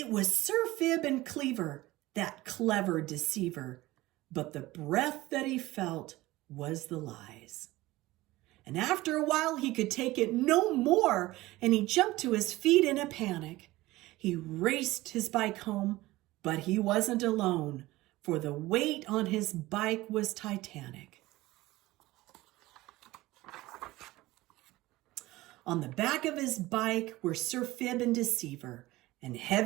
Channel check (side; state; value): left; quieter; 18.4 dB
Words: was Sir Fib and Cleaver, that clever deceiver, but the breath that he felt was the lies. And after a while he could take it no more, and he jumped to his feet in a panic. He raced his bike home, but he wasn't alone, for the weight on his bike was titanic. On the back of his bike were Sir Fib and Deceiver, and